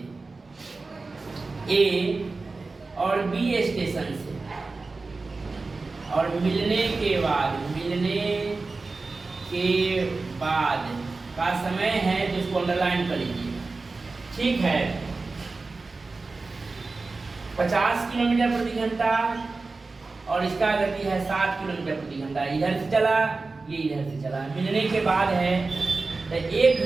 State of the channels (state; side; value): quieter; left; 3.8 dB